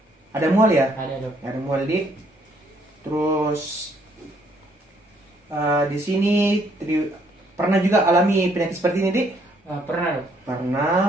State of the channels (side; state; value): both; normal; correlation 0.67